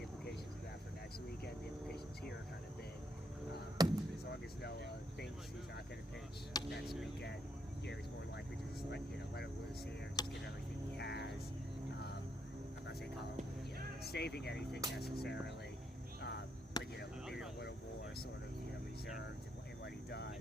implications of that for next weekend, the implications here are kind of big. As long as Noah thinks he's not going to pitch next weekend, he's more likely to just let it loose here, just give everything he has. I'm not saying Colin saving anything necessarily. But maybe a little more sort of reserved in what he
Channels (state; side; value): normal; both; correlation 0.76